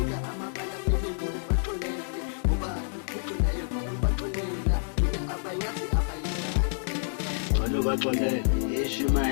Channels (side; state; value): right; silent; digital silence